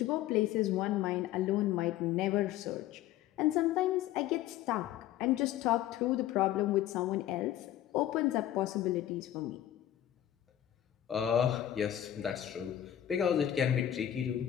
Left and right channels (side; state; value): right; quieter; 12.2 dB